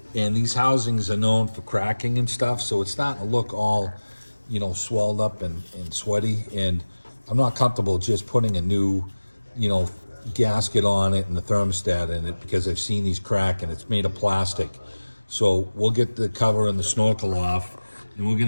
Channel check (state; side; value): inverted; both; correlation -1.00